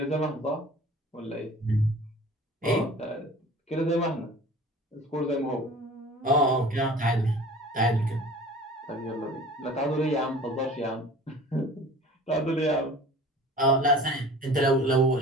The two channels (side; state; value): both; normal; correlation 0.43